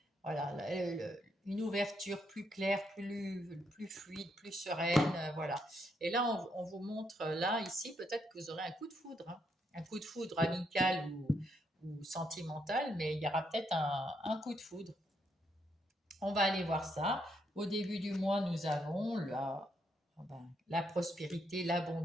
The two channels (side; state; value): both; normal; correlation 0.76